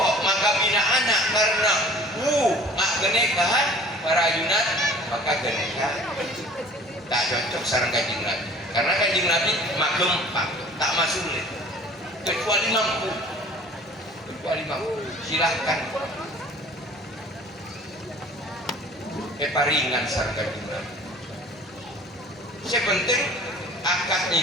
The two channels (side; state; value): both; normal; correlation 0.48